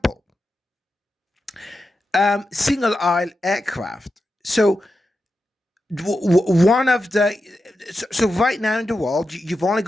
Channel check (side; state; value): both; normal; correlation 0.89